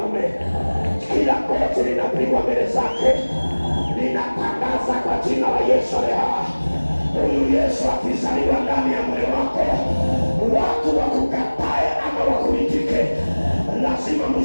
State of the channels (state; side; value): inverted; both; correlation -1.00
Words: Kila goti linapigwa mbele zake. Ninatangaza kwa jina la Yesu leo, huyu Yesu akizaliwa ndani ya moyo wako, watu wakukatae ama wakuitike, lazima